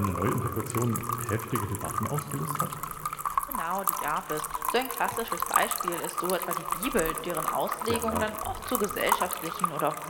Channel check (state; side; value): identical; both; correlation 1.00